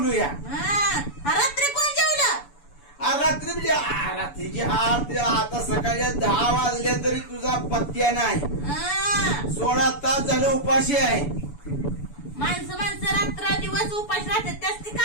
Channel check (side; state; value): right; late; 7.0 ms